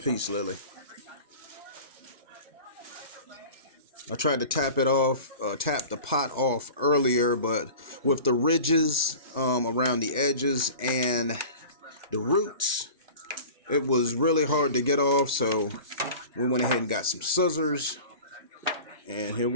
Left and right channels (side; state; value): both; inverted; correlation -0.39